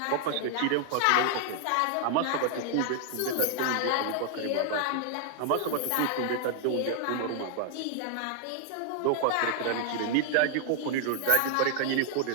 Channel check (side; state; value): both; different; correlation 0.00